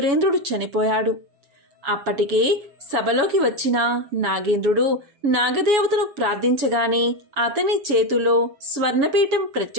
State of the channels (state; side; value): late; left; 7.2 ms